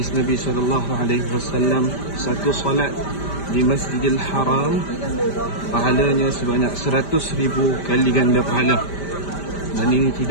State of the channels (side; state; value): right; late; 5.1 ms